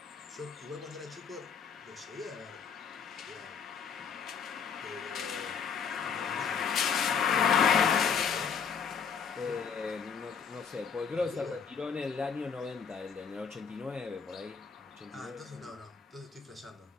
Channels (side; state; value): right; quieter; 6.5 dB